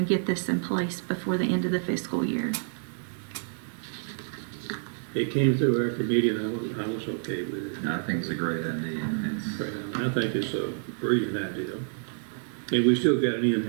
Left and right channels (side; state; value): left; silent; digital silence